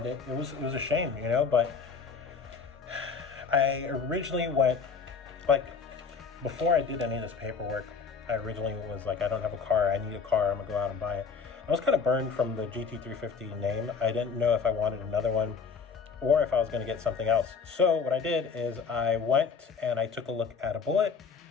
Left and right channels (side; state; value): right; quieter; 5.5 dB